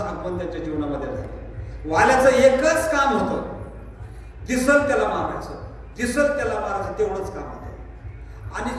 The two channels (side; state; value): both; identical; correlation 1.00